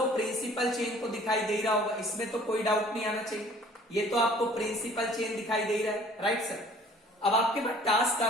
प्रिंसिपल चेन तो दिखाई दे रहा होगा, इसमें तो कोई डाउट नहीं आना चाहिए। ये तो आपको प्रिंसिपल चेन दिखाई दे रहा है। राइट सर, अब आपके पास टास्क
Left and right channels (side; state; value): both; normal; correlation 0.53